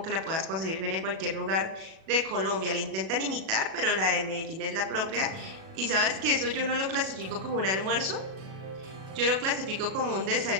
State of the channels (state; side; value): late; left; 37 ms